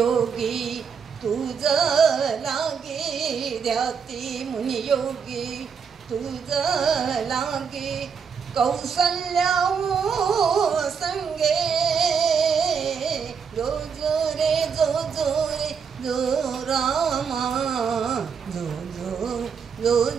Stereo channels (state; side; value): quieter; left; 6.4 dB